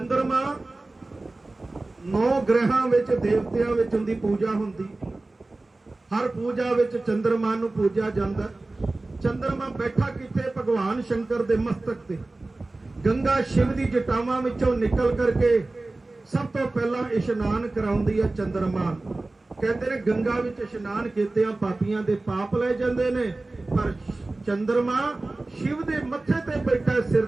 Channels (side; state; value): left; quieter; 3.1 dB